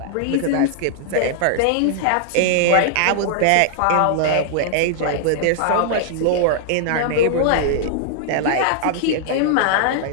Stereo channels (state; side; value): different; both; correlation -0.01